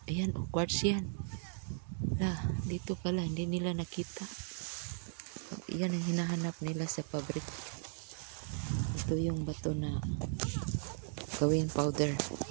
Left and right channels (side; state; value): left; silent; 53 dB below the other